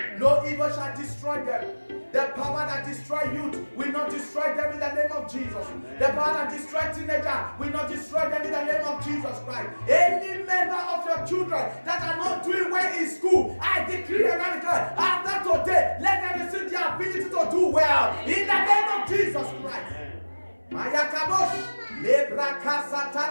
No evil shall destroy them. The power that destroys youth will not destroy them in the name of Jesus. The power that destroys teenagers will not destroy them in the name of Jesus Christ. Any member of your children that are not doing well in school, I decree and I declare, after today, let them receive the ability to do well in the name of Jesus Christ. Mayakabosh. Every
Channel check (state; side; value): inverted; both; correlation -1.00